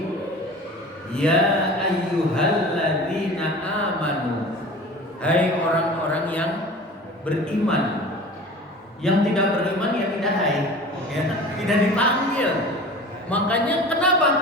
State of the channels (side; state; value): both; normal; correlation 0.39